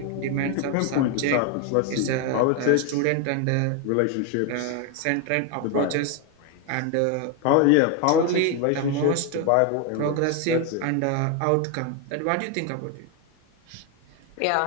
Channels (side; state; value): both; different; correlation 0.01